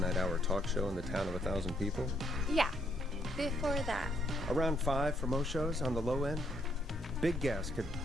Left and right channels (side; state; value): both; normal; correlation 0.72